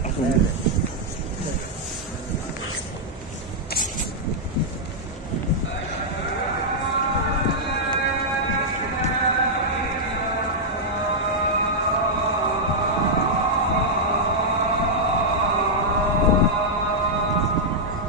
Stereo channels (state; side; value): normal; both; correlation -0.06